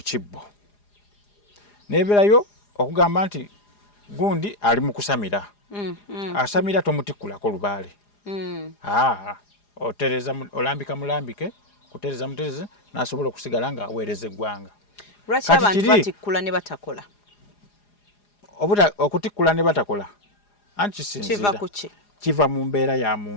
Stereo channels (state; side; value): late; right; 4.9 ms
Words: kibbo nebeerayo okugamba nti gundi ali mu kusamira asamira tomutikkulako lubaale otereza olambika mulambike kutereza mutereze n'asobola okusigala ng'aweereza eggwanga. Lwaki abantu batikkula ne batakola? Okutikkula ne batakola anti kisinzira kiva ku ki? Kiva mu mbeera ya